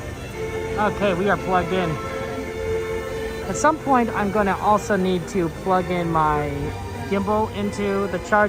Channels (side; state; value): both; identical; correlation 1.00